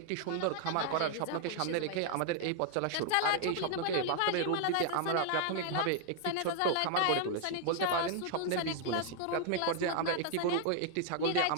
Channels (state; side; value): different; both; correlation 0.00